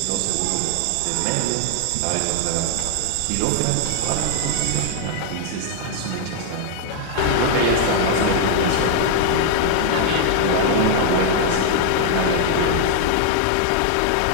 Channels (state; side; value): different; both; correlation 0.00